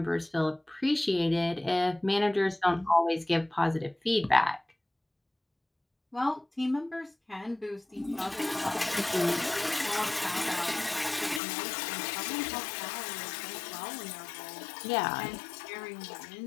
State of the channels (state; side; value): drops out; right; at 11.4 s